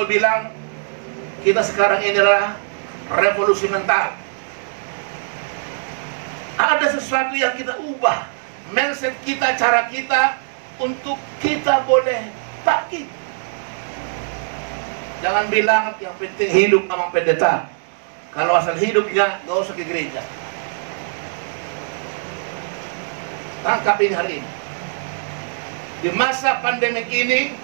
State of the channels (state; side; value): silent; left; digital silence